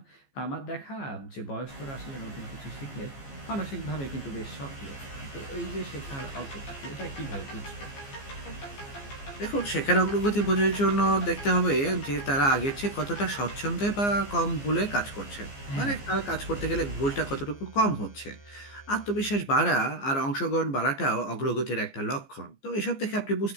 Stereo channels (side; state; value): right; late; 15 ms